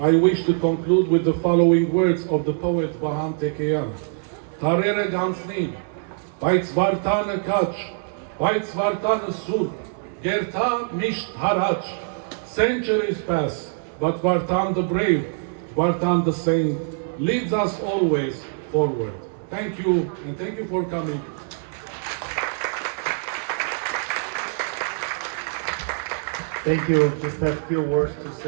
I wish to conclude with the following words of the poet Berjekian. Tarere gansnin, բայց Վարդանը կաչ, բայց Վարդանը սուր, Գերտա միշտ հարաչ. Centuries pass, but Vartan the brave, Vartan the saint, leads us always forward. Thank you, and thank you for coming. Thank you. Just a few words to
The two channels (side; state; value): left; silent; 61 dB below the other